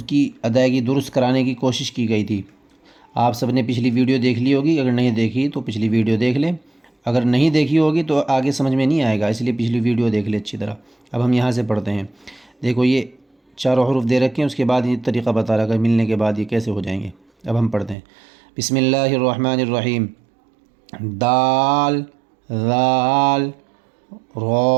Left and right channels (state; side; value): drops out; left; at 17.9 s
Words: کی ادائیگی درست کرانے کی کوشش کی گئی تھی۔ آپ سب نے پچھلی ویڈیو دیکھ لی ہوگی، اگر نہیں دیکھی تو پچھلی ویڈیو دیکھ لیں، اگر نہیں دیکھی ہوگی تو آگے سمجھ میں نہیں آئے گا، اس لیے پچھلی ویڈیو دیکھ لیں اچھی طرح۔ اب ہم یہاں سے پڑھتے ہیں۔ دیکھو یہ چاروں حروف دے رکھے ہیں، اس کے بعد یہ طریقہ بتا رہا ہے ملنے کے بعد یہ کیسے ہو جائیں گے۔ اب ہم پڑھتے ہیں۔ بسم اللہ الرحمن الرحیم۔ دال، ذال،